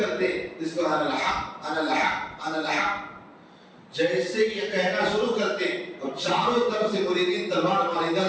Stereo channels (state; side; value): identical; both; correlation 1.00